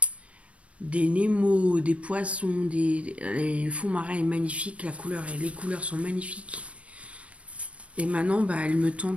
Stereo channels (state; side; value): late; left; 0.063 ms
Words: des Nemo, des poissons, le fond marin est magnifique, les couleurs sont magnifiques. Et maintenant, bah, elle me